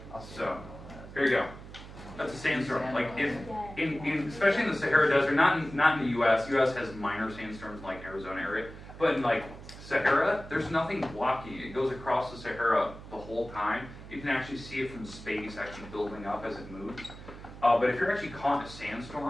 So, here you go. That's a sandstorm. Like especially in the Sahara Desert, not in the U.S. U.S. has minor sandstorms like Arizona area, but in like Sahara, there's nothing blocking it. It goes across the Sahara the whole time. You can actually see it from space, actually building up as it moves. But if you're actually caught in a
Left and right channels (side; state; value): right; noise; hum, 15 dB below the sound